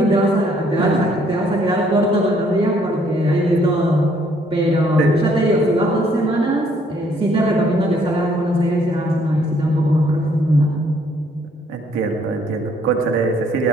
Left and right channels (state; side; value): normal; both; correlation 0.65